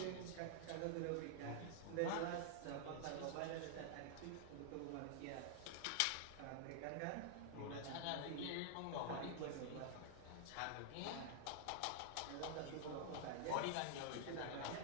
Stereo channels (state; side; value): different; both; correlation -0.01